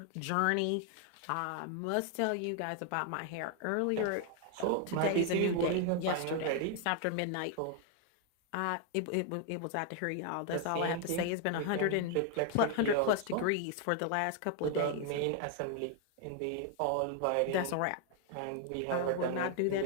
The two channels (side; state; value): both; different; correlation 0.00